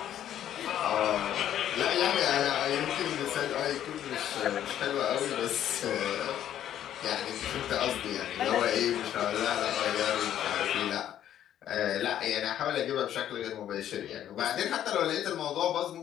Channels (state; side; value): quieter; right; 11.0 dB